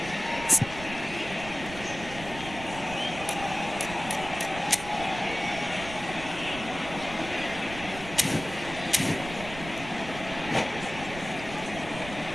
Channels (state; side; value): noise; right; rumble, 12 dB below the sound